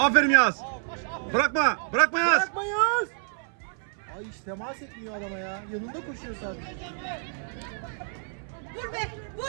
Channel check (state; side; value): silent; left; 59 dB below the other